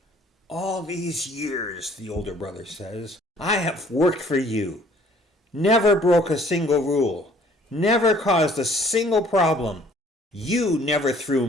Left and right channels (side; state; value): both; normal; correlation 0.57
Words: "All these years," the older brother says, "I have worked for you. Never broke a single rule. Never caused a single problem. You never threw